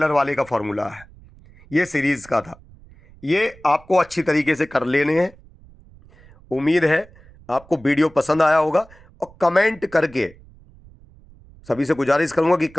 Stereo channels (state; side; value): noise; right; rumble, 25 dB below the sound